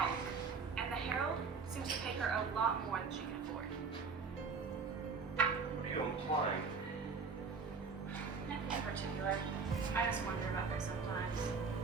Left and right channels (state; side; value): quieter; left; 5.0 dB